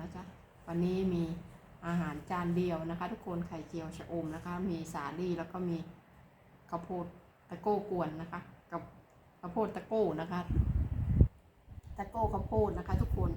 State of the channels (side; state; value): both; identical; correlation 1.00